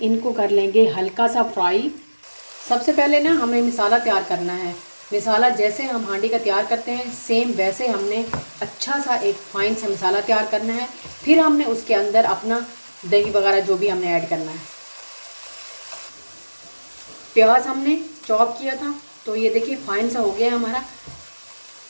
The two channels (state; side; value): inverted; both; correlation -1.00